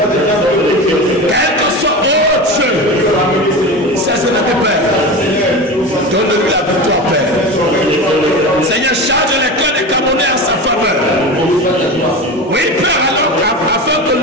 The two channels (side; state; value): both; normal; correlation 0.27